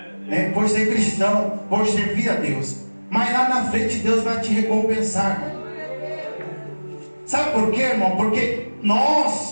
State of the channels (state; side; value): inverted; both; correlation -1.00